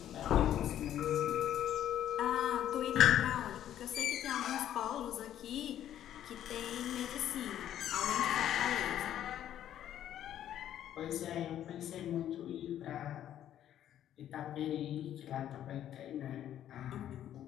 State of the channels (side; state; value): right; quieter; 11.2 dB